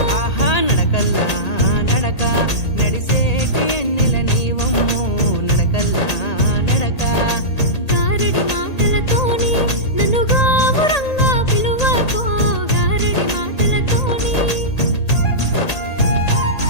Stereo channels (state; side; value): late; right; 1.8 ms